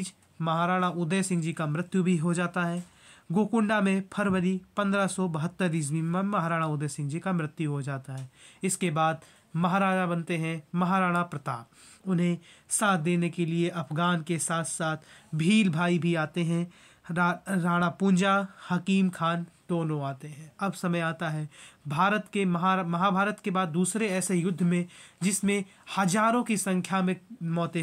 महाराणा उदय सिंह जी का मृत्यु भी हो जाता है। गोकुंडा में फरवरी 1572 ईस्वी में महाराणा उदय सिंह जी का मृत्यु हो जाता है। इसके बाद महाराजा बनते हैं महाराणा प्रताप। उन्हें साथ देने के लिए अफगान के साथ साथ भील भाई भी आते हैं। राणा पूंजा, हकीम खान दोनों आते हैं। अब समय आता है भारत के महाभारत के बाद दूसरे ऐसे युद्ध में, जिसमें हजारों की संख्या में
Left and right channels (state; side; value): identical; both; correlation 1.00